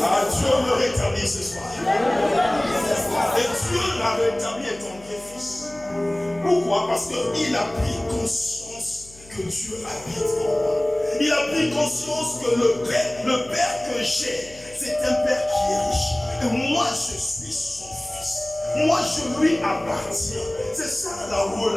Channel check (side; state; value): left; noise; hum, 22 dB below the sound